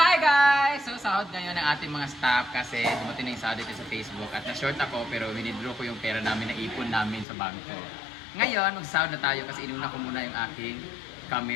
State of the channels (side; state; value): right; drops out; at 7.2 s